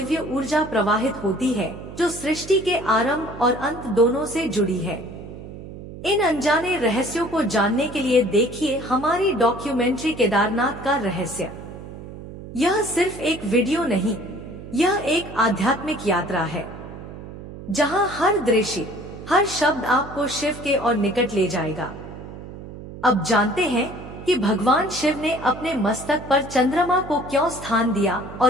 ऊर्जा प्रवाहित होती है जो सृष्टि के आरंभ और अंत दोनों से जुड़ी है। इन अनजाने रहस्यों को जानने के लिए देखिए हमारी डॉक्यूमेंट्री केदारनाथ का रहस्य। यह सिर्फ एक वीडियो नहीं, यह एक आध्यात्मिक यात्रा है जहां हर दृश्य, हर शब्द आपको शिव के और निकट ले जाएगा। अब जानते हैं कि भगवान शिव ने अपने मस्तक पर चंद्रमा को क्यों स्थान दिया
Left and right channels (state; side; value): noise; right; hum, 13 dB below the sound